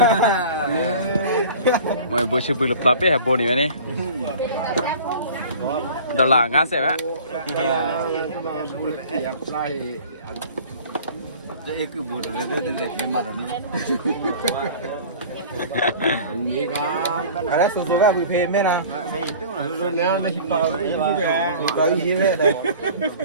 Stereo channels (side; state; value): both; inverted; correlation -0.43